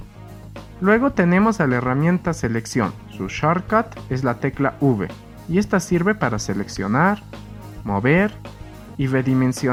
Luego tenemos a la herramienta Selección. Su shortcut es la tecla V y esta sirve para seleccionar, mover y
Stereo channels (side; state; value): both; identical; correlation 1.00